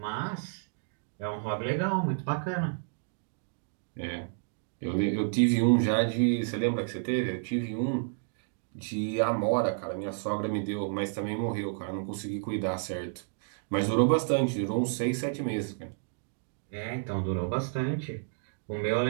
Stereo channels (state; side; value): silent; left; digital silence